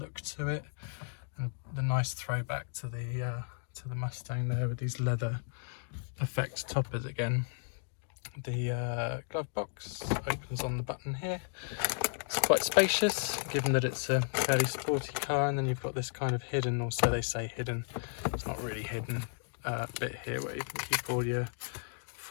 to it, and the nice throwback to the Mustang there with these leather effect toppers again. The glove box opens on the button here. It's quite spacious, given that it's a fairly sporty car, and then you've got this kind of hidden, or so they say hidden, it's not really hidden, bit here where you can keep all your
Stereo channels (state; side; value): silent; right; digital silence